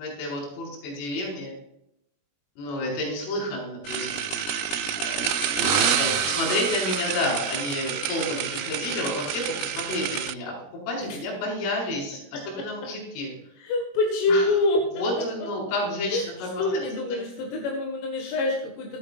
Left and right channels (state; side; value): late; right; 21 ms